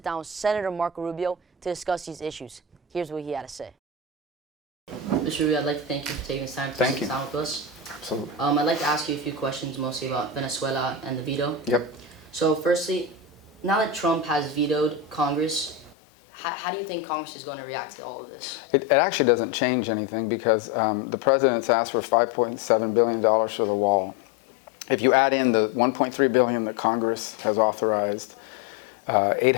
down with Senator Marco Rubio to discuss these issues. Here's what he had to say. Mr. Rubio, I'd like to thank you for taking the time to sit down with us. Absolutely. I'd like to ask you a few questions, mostly about Venezuela and the veto. Yep. So firstly, now that Trump has vetoed Congress, how do you think Congress is going to react to all of this? It actually doesn't change anything because the president's asked for $5.7 billion for the wall. If you add in the $1.3 billion that Congress has authorized,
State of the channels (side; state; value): right; drops out; at 16.0 s